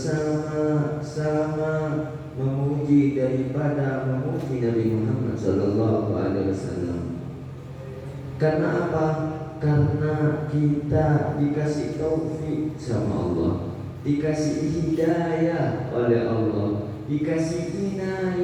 memuji daripada memuji Nabi Muhammad sallallahu alaihi wasallam. Karena apa? Karena kita dikasih taufik sama Allah, dikasih hidayah oleh Allah, dikasih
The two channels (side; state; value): both; identical; correlation 1.00